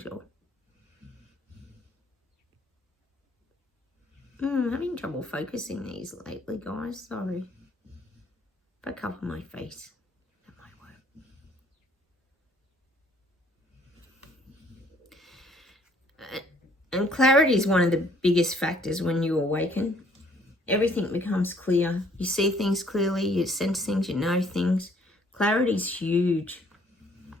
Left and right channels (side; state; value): both; normal; correlation 0.62